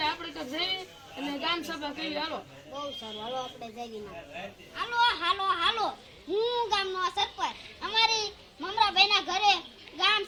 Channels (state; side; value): identical; both; correlation 1.00